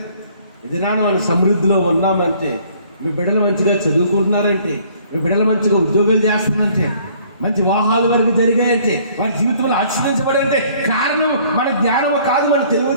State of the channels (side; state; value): both; inverted; correlation -0.59